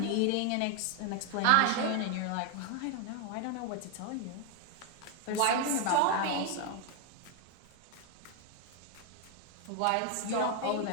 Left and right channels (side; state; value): both; different; correlation 0.01